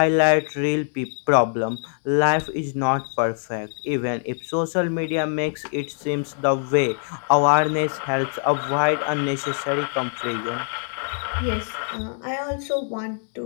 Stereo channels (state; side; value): silent; right; digital silence